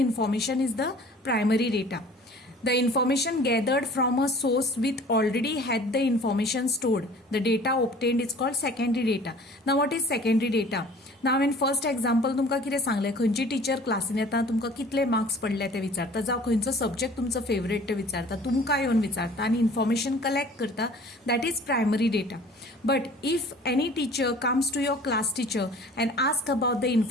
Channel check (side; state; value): both; normal; correlation 0.48